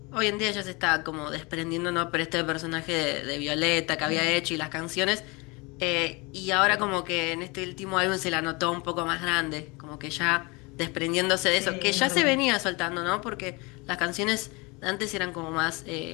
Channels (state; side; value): quieter; right; 26.6 dB